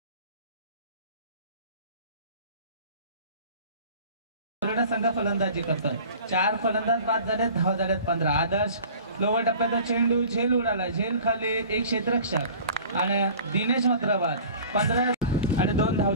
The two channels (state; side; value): inverted; both; correlation -0.44